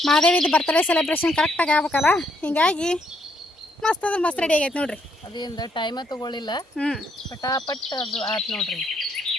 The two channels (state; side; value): normal; both; correlation 0.73